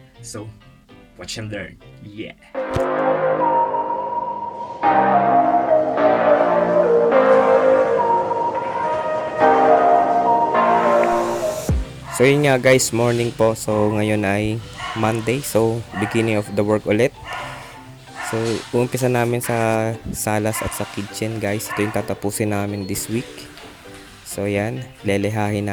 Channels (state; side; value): identical; both; correlation 1.00